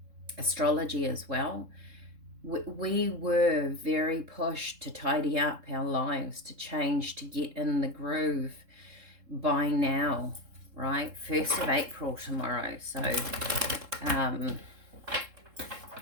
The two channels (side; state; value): left; late; 3.7 ms